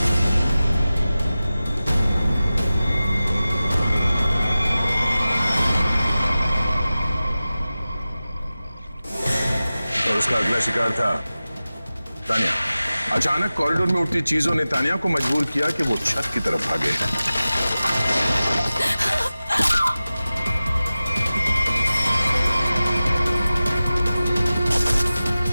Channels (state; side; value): inverted; both; correlation -0.96